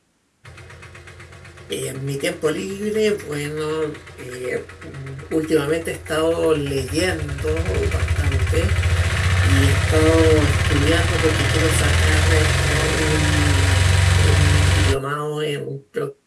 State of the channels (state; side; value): identical; both; correlation 1.00